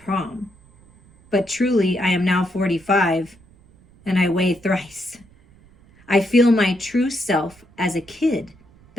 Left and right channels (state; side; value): noise; right; rumble, 28 dB below the sound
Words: But truly, I am now 45 and I weigh thrice. I feel my true self as a kid